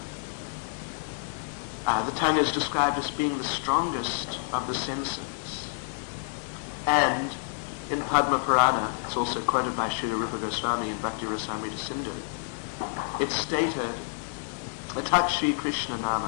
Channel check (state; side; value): silent; right; 59 dB below the other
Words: The tongue is described as being the strongest of the senses. And in Padma Purana, it's also quoted by Srila Rupa Goswami in Bhakti Rasamrita Sindhu, it's stated, Atat Shri Krishna